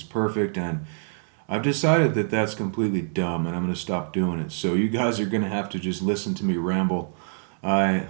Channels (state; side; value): silent; left; digital silence